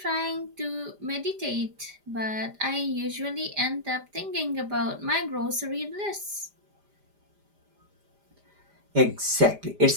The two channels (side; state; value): left; late; 5.0 ms